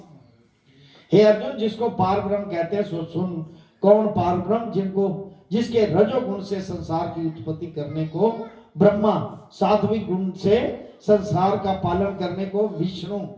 हे अर्जुन, जिसको पार ब्रह्म कहते हैं सो सुन। कौन पार ब्रह्म? जिनको जिसके रजोगुण से संसार की उत्पत्ति करने को ब्रह्मा, सात्विक गुण से संसार का पालन करने को विष्णु,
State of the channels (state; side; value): identical; both; correlation 1.00